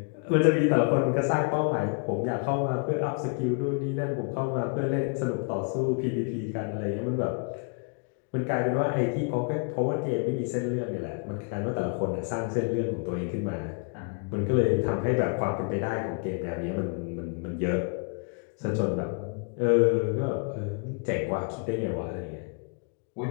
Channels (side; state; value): right; quieter; 38.6 dB